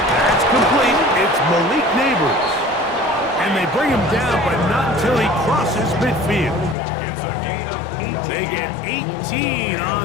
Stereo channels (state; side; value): drops out; right; at 6.8 s